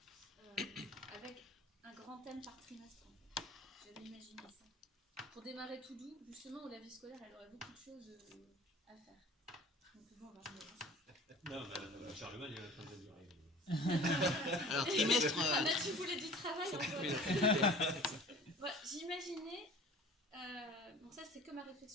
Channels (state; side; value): normal; both; correlation 0.43